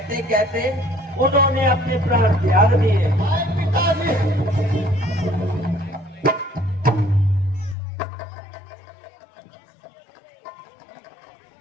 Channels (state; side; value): drops out; right; at 7.8 s